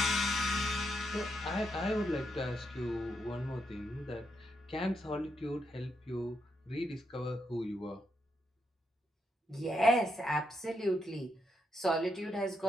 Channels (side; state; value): both; normal; correlation 0.80